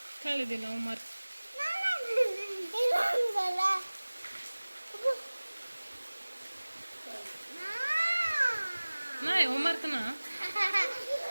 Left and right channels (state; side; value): inverted; both; correlation -1.00